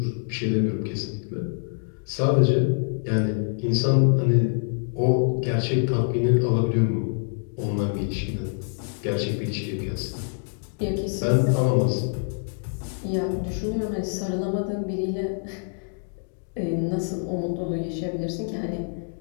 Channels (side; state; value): right; silent; digital silence